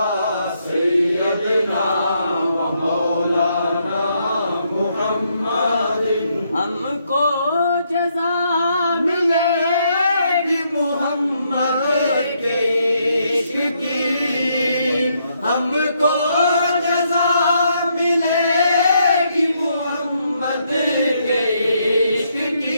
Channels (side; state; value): both; inverted; correlation -0.75